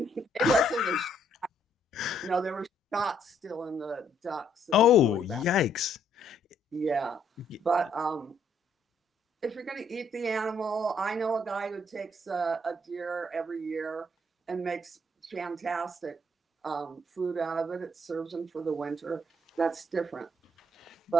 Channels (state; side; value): normal; both; correlation 0.69